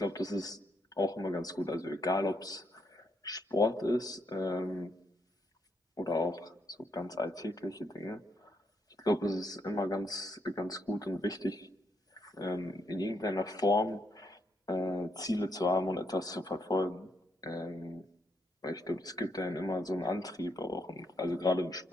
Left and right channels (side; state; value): both; normal; correlation 0.77